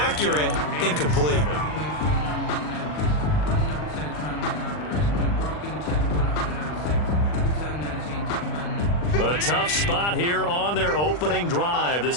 incomplete. A tough spot here on their opening drive.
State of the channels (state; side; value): late; right; 40 ms